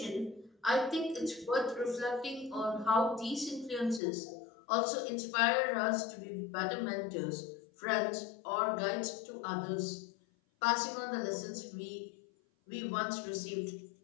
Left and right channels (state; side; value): drops out; right; at 4.0 s